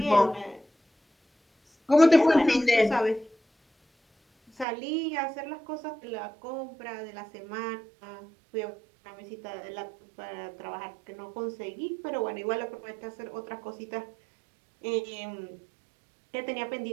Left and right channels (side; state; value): left; drops out; at 4.7 s